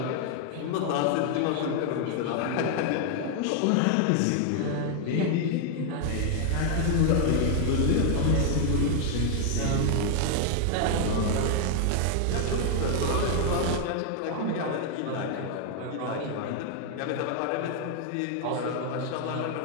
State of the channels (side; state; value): both; different; correlation 0.00